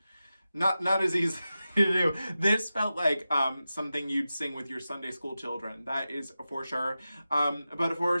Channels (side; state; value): both; inverted; correlation -0.93